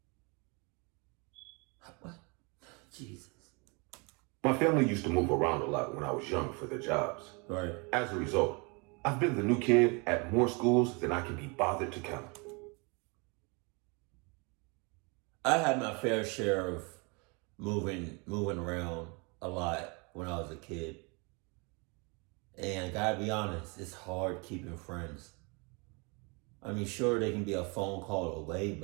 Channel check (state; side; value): quieter; left; 30.8 dB